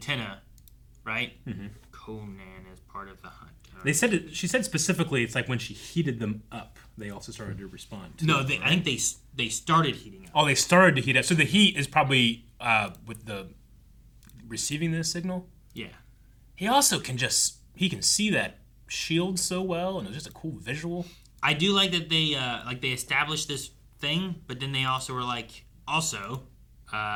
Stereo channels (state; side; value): identical; both; correlation 1.00